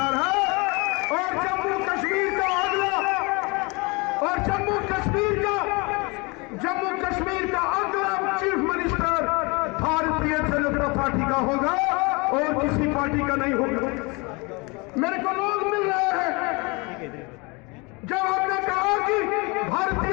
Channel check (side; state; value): right; quieter; 27.9 dB